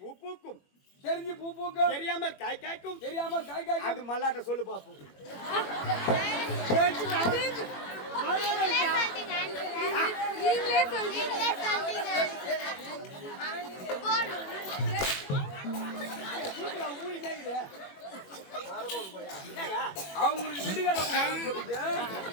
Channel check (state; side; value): late; right; 21 ms